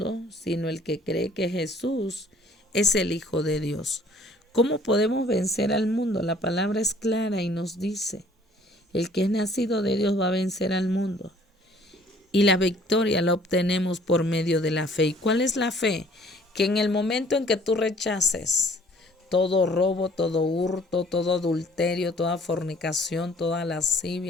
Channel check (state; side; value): normal; both; correlation 0.56